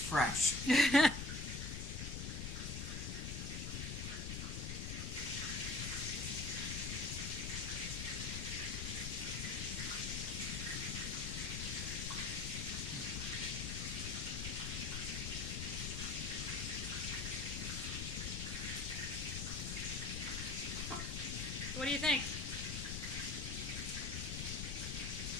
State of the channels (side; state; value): left; noise; rumble, 4 dB below the sound